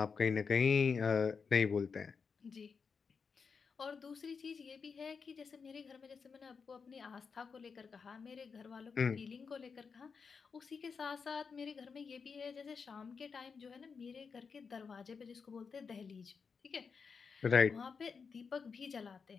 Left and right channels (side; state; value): right; quieter; 5.5 dB